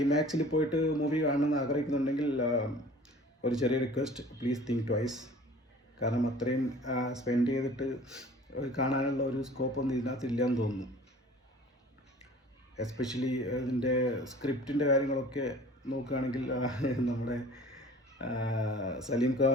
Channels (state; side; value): normal; both; correlation 0.46